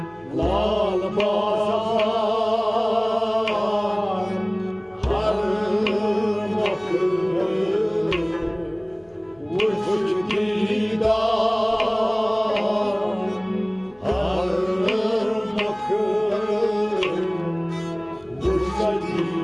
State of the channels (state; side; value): noise; left; hum, 30 dB below the sound